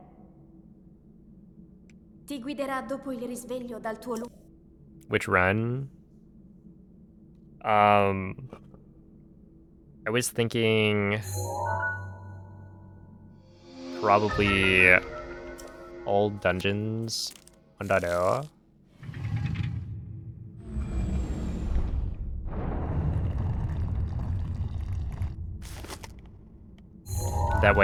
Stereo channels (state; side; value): identical; both; correlation 1.00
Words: Ti guiderà dopo il risveglio dal tuo lungo... Which run? I was thinking probably all dungeons 1.0. That